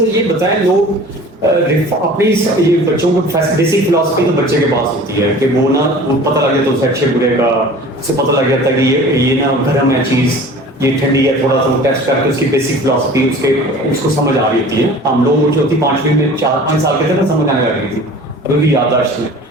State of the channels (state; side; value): normal; both; correlation 0.43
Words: یہ بتائیں لوگ اپنی یہ بچوں کو بیسک فلاسفی تو بچے کے پاس ہوتی ہے کہ وہ نا پتہ لگ جاتا ہے اسے اچھے برے کا اسے پتہ لگ جاتا ہے کہ یہ نا گرم ہے چیز یہ ٹھنڈی ہے تھوڑا سا ٹیسٹ کر کے اس کی بیسک فلاسفی اس کو سمجھ آ رہی ہوتی ہے ہم لوگوں جو ہوتی 5ویں میں 4-5 سال کے تھے نا سمجھ آنے لگی تھی ابھی بھی یادداشت میں